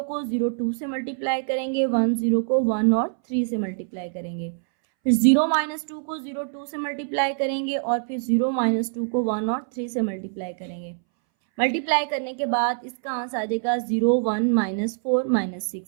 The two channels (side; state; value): left; silent; 61 dB below the other